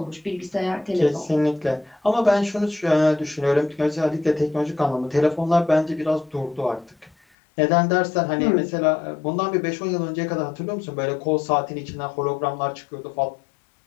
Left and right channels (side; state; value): right; drops out; at 7.2 s